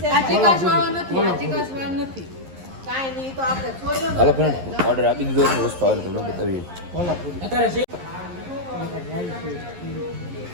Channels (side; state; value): left; late; 11 ms